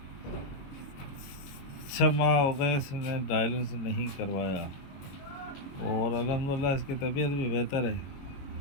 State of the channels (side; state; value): right; late; 22 ms